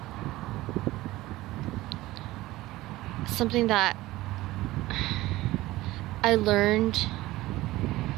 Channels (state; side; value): quieter; left; 17.8 dB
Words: that I learned